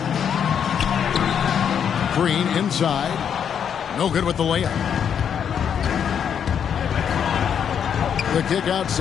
Green inside. No good with the layup. The kick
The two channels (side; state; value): right; quieter; 8.1 dB